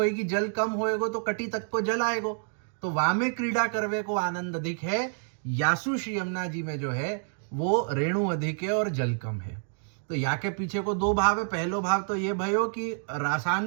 जल कम होएगो तो कटी तक को जल आएगो, तो वहां में क्रीड़ा करवे को आनंद अधिक है। यासु श्री यमुना जी में जो है वो रेणु अधिक है और जल कम है। तो या के पीछे को दो भाव है। पहलो भाव तो ये भयो कि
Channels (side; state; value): left; silent; 59 dB below the other